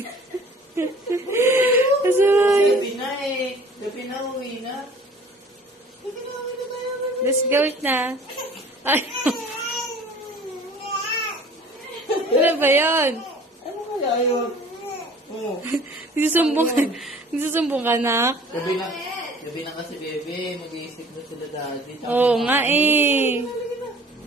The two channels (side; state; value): both; normal; correlation 0.49